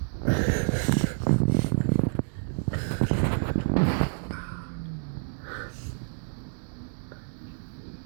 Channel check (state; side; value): silent; left; 59 dB below the other